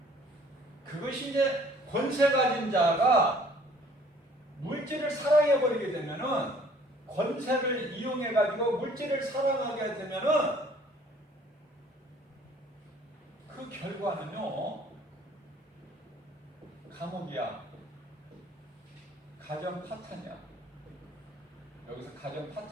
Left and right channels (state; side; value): normal; both; correlation 0.56